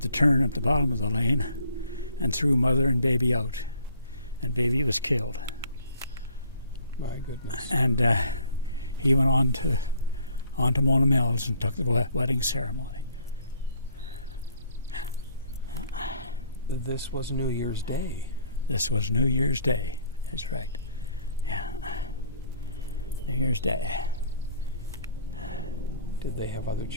the turn at the bottom of the lane and threw mother and baby out, and baby was killed. My goodness. And he went on to Mona Mills and took the wedding ceremony. This was New Year's Day. This was New Year's Day. That's right. Yeah. New Year's Day. Did they have other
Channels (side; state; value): both; inverted; correlation -0.59